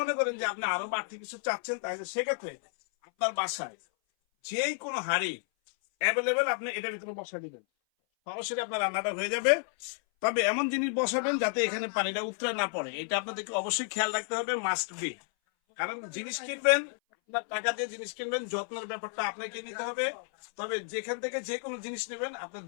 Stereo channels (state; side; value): silent; right; 57 dB below the other